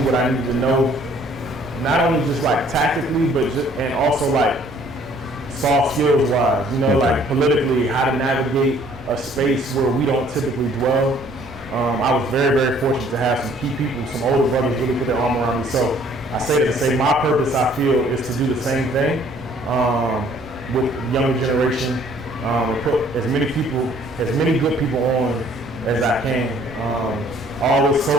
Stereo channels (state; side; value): normal; both; correlation 0.59